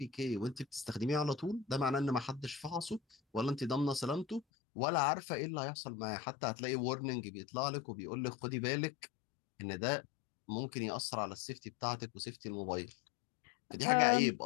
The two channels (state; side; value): drops out; right; at 4.4 s